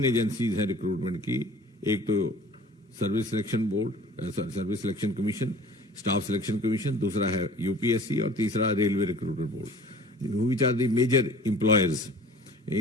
एजेंसीज हैं रिक्रूटमेंट की। एक तो service selection board, service selection commission, staff selection commission, दूसरा है यूपीएससी और तीसरा railway recruitment board, which are the major employers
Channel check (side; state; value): both; normal; correlation 0.46